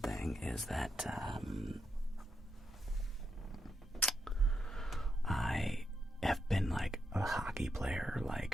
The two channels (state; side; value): normal; both; correlation 0.83